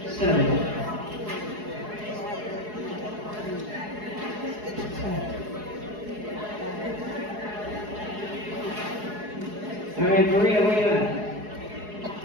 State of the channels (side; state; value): left; late; 4.8 ms